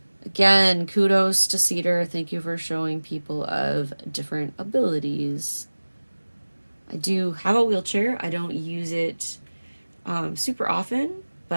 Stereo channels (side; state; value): both; inverted; correlation -1.00